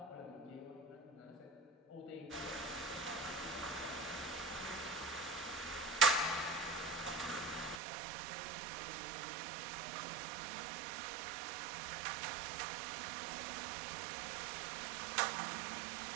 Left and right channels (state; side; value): drops out; left; at 7.8 s